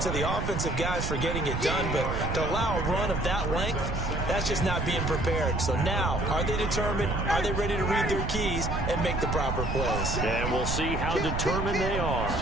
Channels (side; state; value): right; noise; rumble, 2 dB below the sound